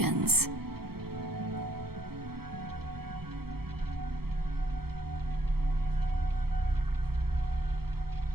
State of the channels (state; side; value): late; left; 0.95 ms